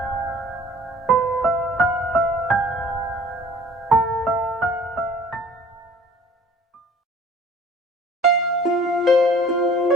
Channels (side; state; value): both; normal; correlation 0.50